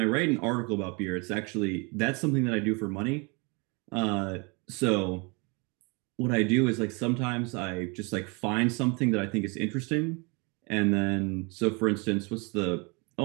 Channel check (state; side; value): quieter; left; 30.6 dB